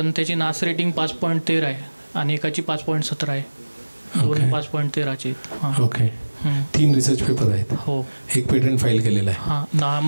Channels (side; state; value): both; inverted; correlation -1.00